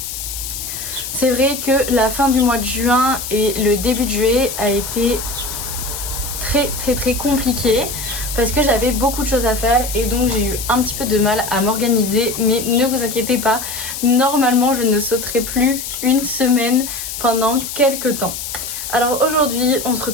C'est vrai que la fin du mois de juin et le début de juillet a été très compliqué parce que j'avais beaucoup de choses à faire et donc j'ai eu un petit peu de mal à m'organiser, mais ne vous inquiétez pas, normalement je ne sauterai plus une semaine pendant quelques temps. Alors aujourd'hui on se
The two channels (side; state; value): left; noise; hiss, 7 dB below the sound